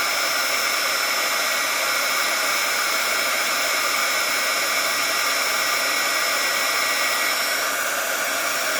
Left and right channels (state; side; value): identical; both; correlation 1.00